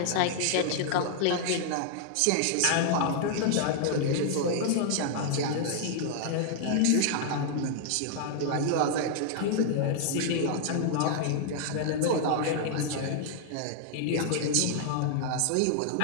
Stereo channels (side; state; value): both; different; correlation 0.00